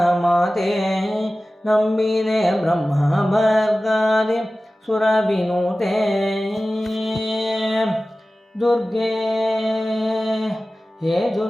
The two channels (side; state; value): both; normal; correlation 0.96